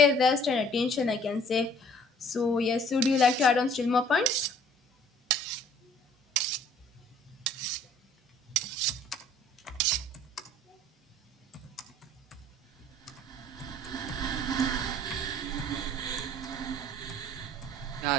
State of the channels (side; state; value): both; normal; correlation 0.55